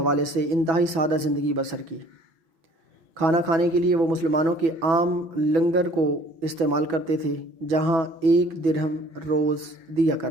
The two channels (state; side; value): late; left; 6.1 ms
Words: سے انتہائی سادہ زندگی بسر کی۔ کھانا کھانے کے لیے وہ مسلمانوں کے عام لنگر کو استعمال کرتے تھے، جہاں 1 درہم روز دیا